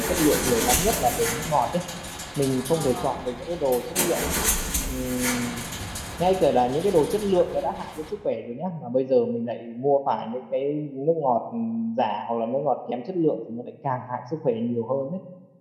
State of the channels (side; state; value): both; identical; correlation 1.00